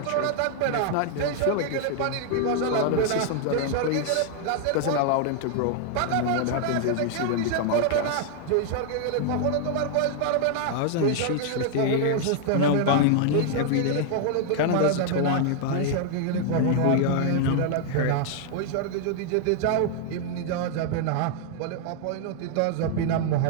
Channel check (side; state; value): both; different; correlation 0.00